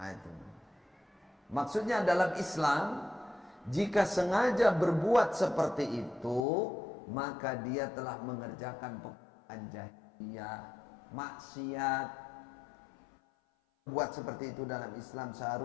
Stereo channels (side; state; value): right; drops out; at 6.5 s